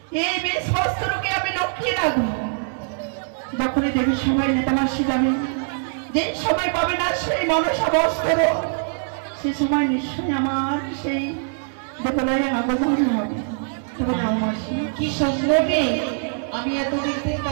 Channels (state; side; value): silent; left; 64 dB below the other